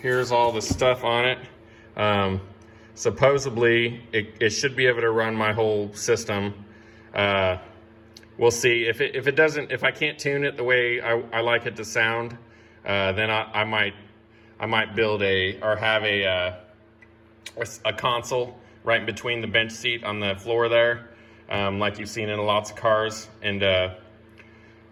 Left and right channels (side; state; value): both; identical; correlation 1.00